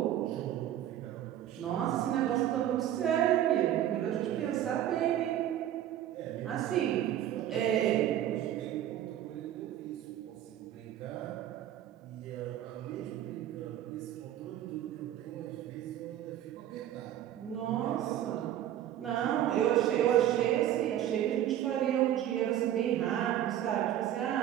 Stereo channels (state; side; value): quieter; left; 11.7 dB